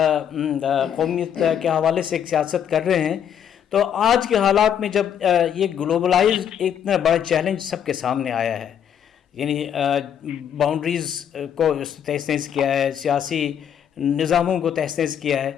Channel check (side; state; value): right; quieter; 8.9 dB